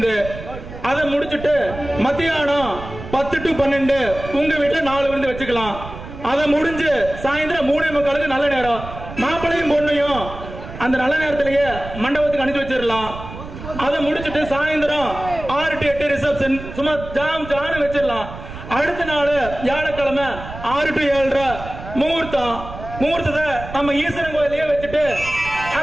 அதை முடிச்சுட்டு மத்தியானம் 10 to 12 உங்க வீட்டுல 4 விருந்து வச்சுக்கலாம். அதை முடிஞ்சு சாயந்தரம் 3:45 நல்ல நேரம். மாப்பிள்ளையும் பொண்ணையும் அந்த நல்ல நேரத்திலேயே மண்டபத்துக்கு அனுப்பி வச்சிடலாம். அதை முடிச்சுட்டு சாயந்தரம் 6 to 8 ரிசப்ஷன் சும்மா ஜாம் வச்சிடலாம். அடுத்த நாள் வியாழக்கிழமை 6 to 7:30 முகூர்த்தம். முகூர்த்தத்தை நம்ம ஈஸ்வரன் கோயிலையே வச்சுட்டு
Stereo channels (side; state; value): right; noise; rumble, 12 dB below the sound